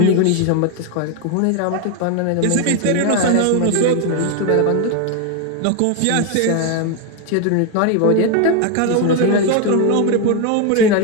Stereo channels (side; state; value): both; different; correlation 0.01